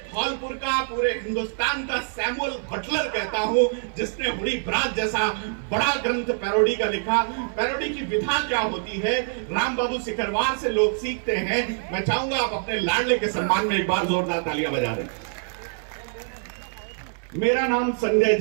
धौलपुर का, पूरे हिंदुस्तान का सैमुअल बटलर कहता हूं, जिसने हुडी ब्राज जैसा बड़ा ग्रंथ पैरोडी का लिखा। पैरोडी की विधा क्या होती है, राम बाबू सिकरवार से लोग सीखते हैं। मैं चाहूंगा आप अपने लाडले के सम्मान में एक बार जोरदार तालियां बजा दें। मेरा नाम संजय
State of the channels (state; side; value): silent; left; 60 dB below the other